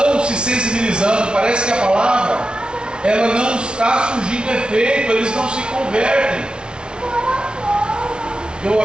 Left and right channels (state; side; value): late; left; 0.056 ms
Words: se sensibilizando, parece que a palavra, ela não está surgindo efeito, eles não se convertem. Eu